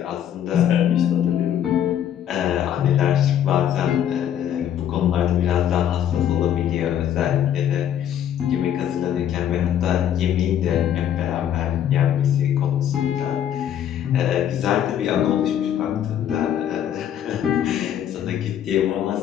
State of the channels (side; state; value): right; quieter; 10.1 dB